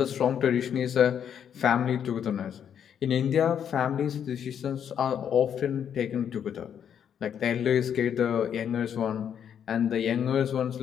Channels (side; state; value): right; quieter; 8.6 dB